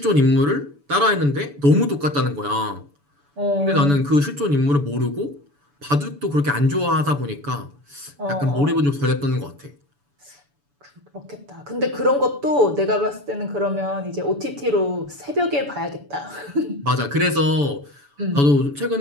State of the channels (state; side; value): late; left; 7.0 ms